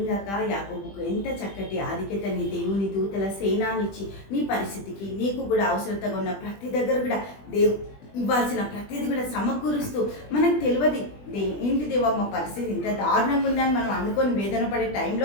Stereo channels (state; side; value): late; right; 20 ms